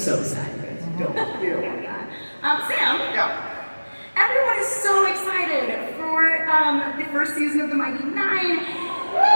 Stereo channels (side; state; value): both; inverted; correlation -1.00